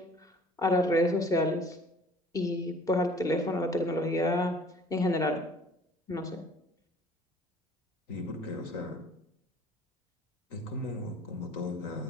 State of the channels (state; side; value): normal; both; correlation 0.52